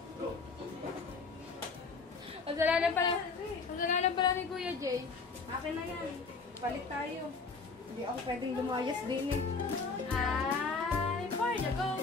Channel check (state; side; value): quieter; right; 4.5 dB